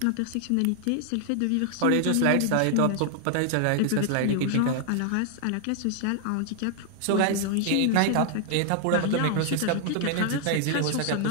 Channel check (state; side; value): different; both; correlation 0.00